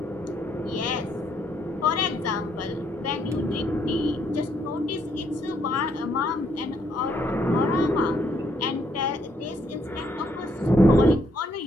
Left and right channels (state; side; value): normal; both; correlation 0.71